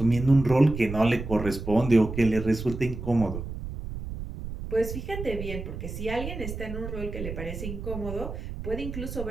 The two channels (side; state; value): right; noise; rumble, 8 dB below the sound